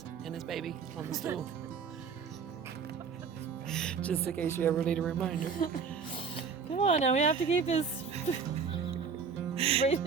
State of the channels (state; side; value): quieter; left; 5.9 dB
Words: and his baby on the stool. Just in case you ever need a reminder. Come on, now we have to keep this